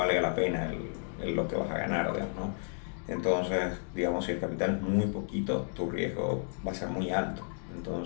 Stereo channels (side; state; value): right; silent; 56 dB below the other